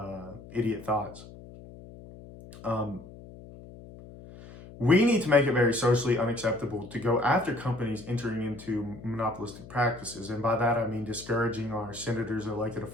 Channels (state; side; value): noise; left; hum, 17 dB below the sound